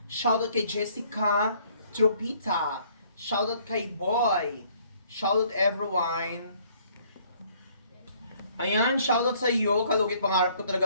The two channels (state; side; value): inverted; both; correlation -0.61